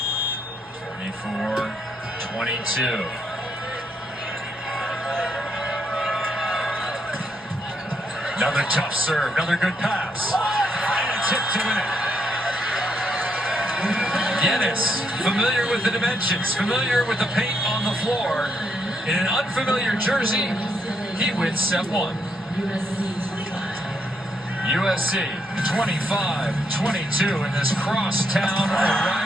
24-22. Another tough serve, another good pass. And a tip to win it. Giannis, familiar with the dimensions, familiar with the paint on the floor. In an unfamiliar jersey, he wins set one. USC 25-22 in this crosstown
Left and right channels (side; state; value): both; normal; correlation 0.76